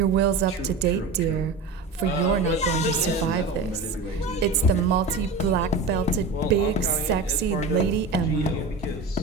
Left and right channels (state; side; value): quieter; left; 3.8 dB